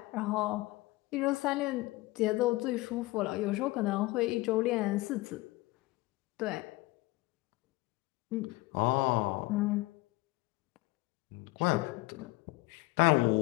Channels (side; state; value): right; quieter; 20.5 dB